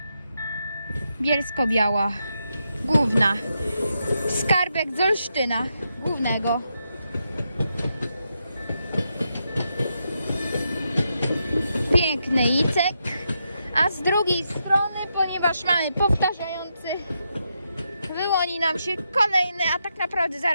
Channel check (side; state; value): both; inverted; correlation -0.83